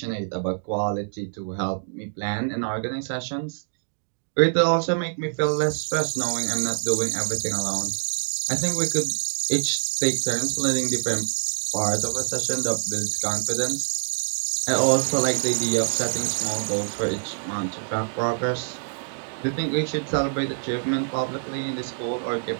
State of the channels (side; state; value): left; silent; digital silence